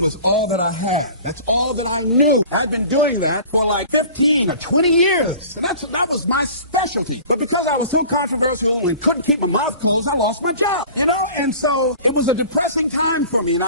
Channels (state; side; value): inverted; both; correlation -0.43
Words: was all that I had. That's all that I knew. I'd been doing that for like 15 or 20 years, and that was my specialty. But because I was so controversial and couldn't keep my mouth closed, I lost my job, and so it was a depressing time for me, and